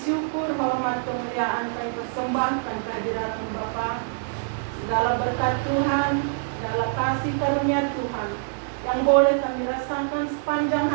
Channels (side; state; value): left; silent; digital silence